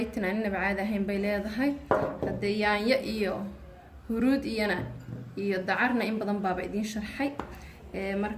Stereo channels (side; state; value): both; identical; correlation 1.00